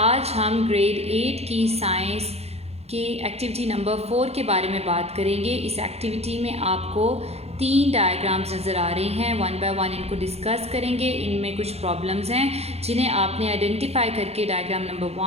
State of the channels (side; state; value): left; late; 0.30 ms